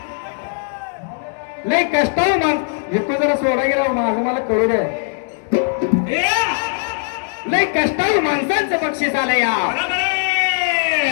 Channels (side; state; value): right; silent; digital silence